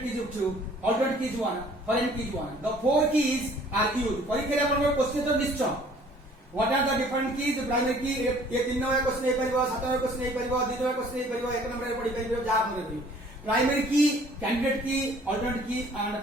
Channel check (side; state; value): both; normal; correlation 0.55